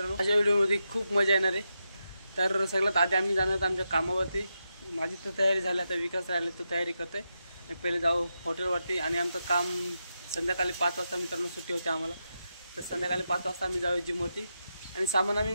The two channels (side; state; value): both; inverted; correlation -0.86